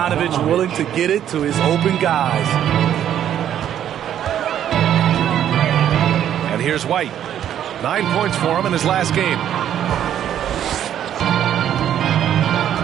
willing to get it to his open guys. And here's White. 9 points for him in his last game.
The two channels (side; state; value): left; quieter; 10.4 dB